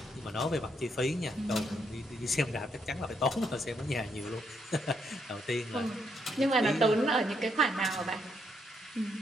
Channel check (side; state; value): both; normal; correlation 0.76